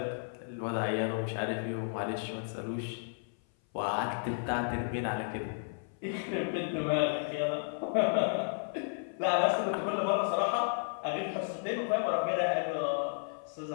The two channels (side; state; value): right; silent; 56 dB below the other